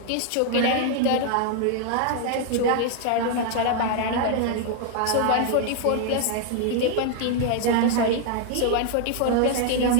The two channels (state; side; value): different; both; correlation 0.00